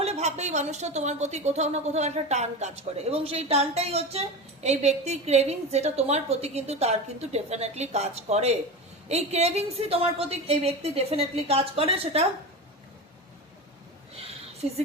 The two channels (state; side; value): normal; both; correlation 0.26